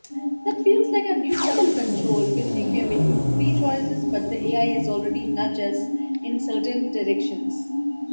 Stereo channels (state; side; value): inverted; both; correlation -1.00